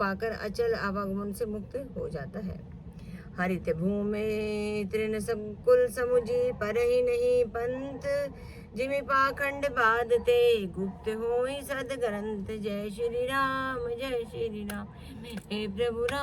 अचल आवागमन से मुक्त हो जाता है। हरित भूमि तृण संकुल समुझी, पर ही नहीं पंथ। जिमि पाखंड बाधते, गुप्त होई सद ग्रंथ। जय श्री राम जय श्री राम, हे प्रभु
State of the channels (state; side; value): identical; both; correlation 1.00